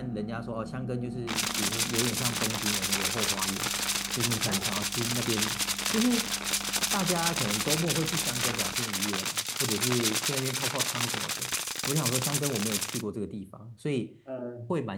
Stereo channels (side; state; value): both; identical; correlation 1.00